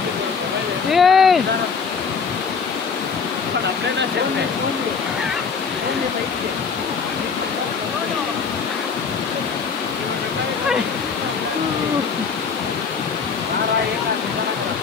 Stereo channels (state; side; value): quieter; right; 5.6 dB